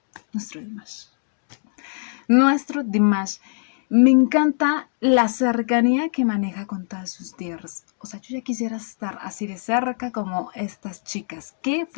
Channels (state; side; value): silent; right; digital silence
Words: Nuestro Dimash. Nuestro Dimash. Me encanta la cercanía que maneja con todas sus dears. O sea, yo ya quisiera estar así de cerca como estas chicas. ¡Qué